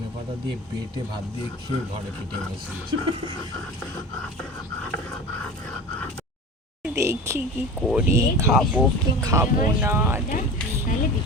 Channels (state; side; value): normal; both; correlation 0.33